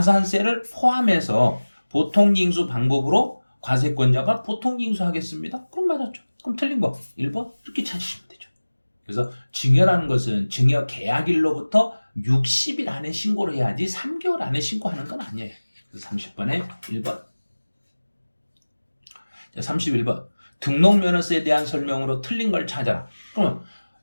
포함해서 보통징수 방법으로 과세권자가 보통징수하겠습니다. 그럼 맞았죠. 그럼 틀린 거 1번 이렇게 찾으시면 되죠. 그래서 증여라는 것은 증여 계약일로부터 60일 안에 신고를 해야지 3개월 안에 신고하는 건 아니에요. 그래서 30번에 1번. 자, 31번. 등록면허세에 대한 설명으로 틀린 걸 찾아라. 그러면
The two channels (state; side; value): inverted; both; correlation -1.00